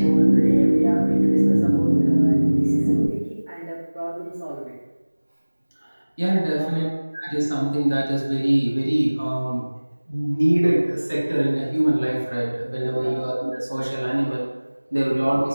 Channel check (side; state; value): both; inverted; correlation -1.00